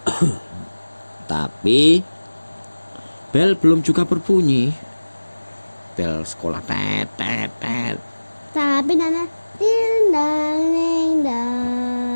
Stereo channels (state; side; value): inverted; both; correlation -1.00